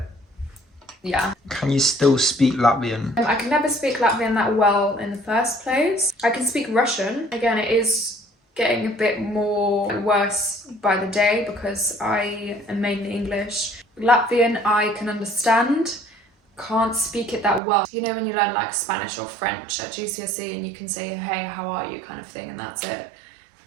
yeah. Can you still speak Latvian? I can never speak Latvian that well in the first place. I can speak Russian. Again, it is getting a bit more worse by the day because I am mainly English. Latvian I can understand. Can't speak it that well. You know when you learn like Spanish or French at GCSE and you can say, hey, how are you kind of thing, and that's it.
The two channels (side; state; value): left; drops out; at 17.6 s